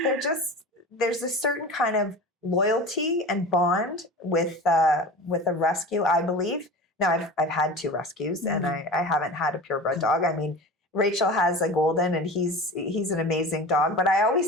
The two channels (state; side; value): normal; both; correlation 0.33